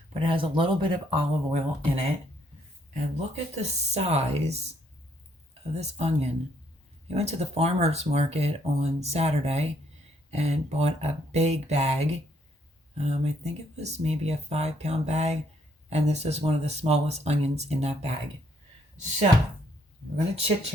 but it has a little bit of olive oil in it. And look at the size of this onion. I went to the farmer's market on Saturday and bought a big bag. I think it was maybe a 5-pound bag, and this is one of the smallest onions in that bag. So we're gonna chit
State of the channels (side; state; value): both; normal; correlation 0.69